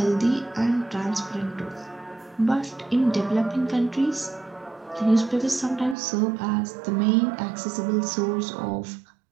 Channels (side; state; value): left; drops out; at 6.0 s